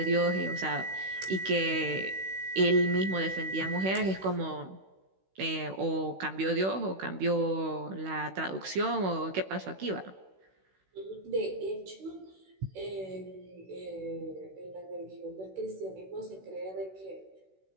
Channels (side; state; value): left; late; 16 ms